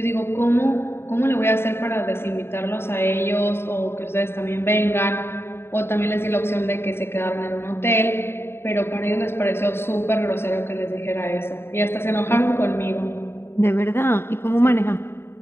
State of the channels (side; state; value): right; late; 0.11 ms